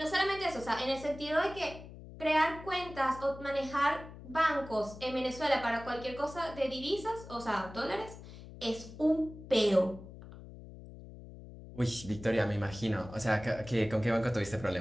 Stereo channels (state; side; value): noise; left; hum, 15 dB below the sound